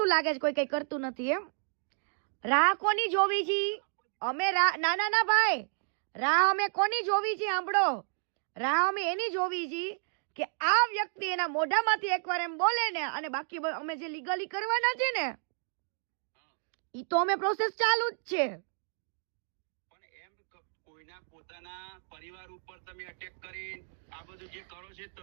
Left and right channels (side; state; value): left; silent; 57 dB below the other